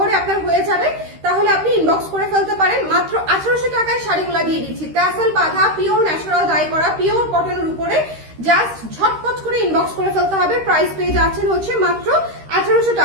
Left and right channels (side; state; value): left; late; 13 ms